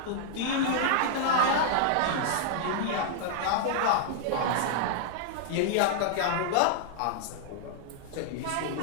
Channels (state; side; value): different; both; correlation -0.01